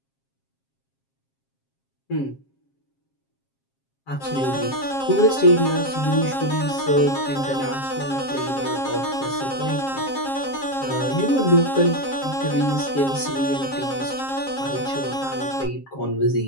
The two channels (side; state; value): right; late; 7.4 ms